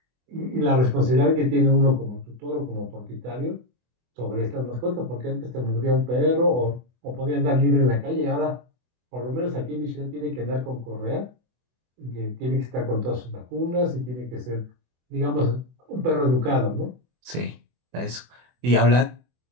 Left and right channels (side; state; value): left; late; 24 ms